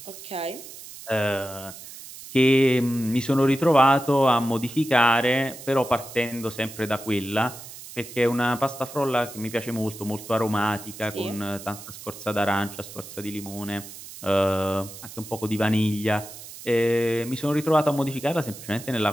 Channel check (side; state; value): right; noise; hiss, 14 dB below the sound